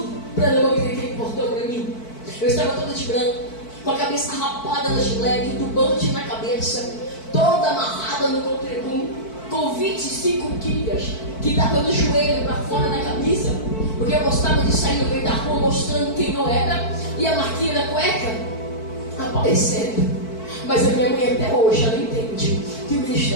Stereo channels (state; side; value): late; right; 4.5 ms